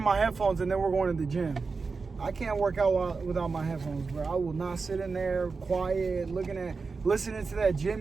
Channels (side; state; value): left; quieter; 4.5 dB